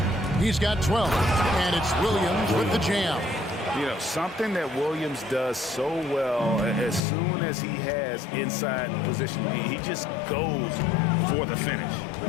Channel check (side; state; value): right; drops out; at 7.0 s